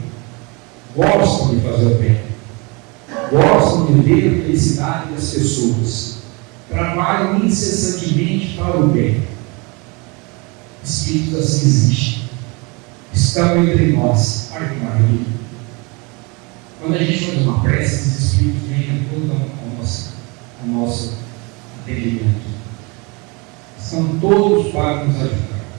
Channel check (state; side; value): quieter; left; 28.7 dB